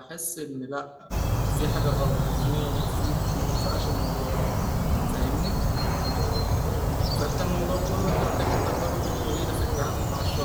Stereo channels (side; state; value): both; identical; correlation 1.00